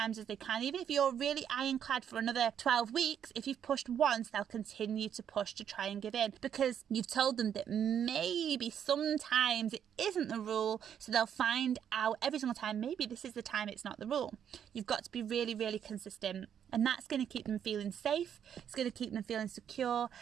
as they can. Even if you're really ironclad for another 12 weeks, if you've pushed once, they'll continue to push to try and give in, because you've told them that maybe sometimes it isn't the rule. So they'll find out every single time, maybe this is the time it's not the rule. You've got to be really, really consistent. And that's going to keep them feeling safe, it's going to keep them feeling secure,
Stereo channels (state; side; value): quieter; left; 8.8 dB